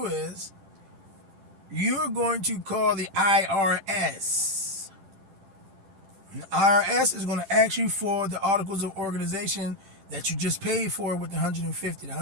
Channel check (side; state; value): left; late; 10 ms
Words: is you're going to call the IRS. And the IRS is going to ask you for the articles of organization that you just paid for with the $150. The